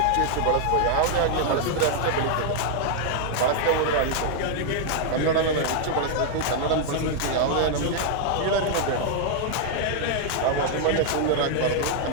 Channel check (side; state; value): both; different; correlation 0.00